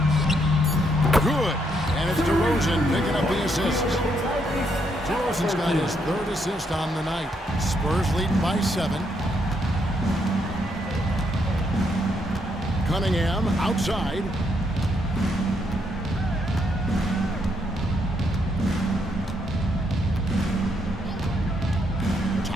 Good. And it's DeRozan picking up the assist. DeRozan's got his 3rd assist on the night. Spurs leading by 7. Cunningham outside.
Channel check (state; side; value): normal; both; correlation 0.75